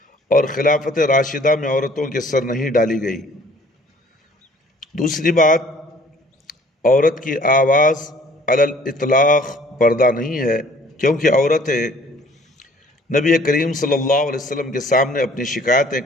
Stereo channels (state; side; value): normal; both; correlation 0.55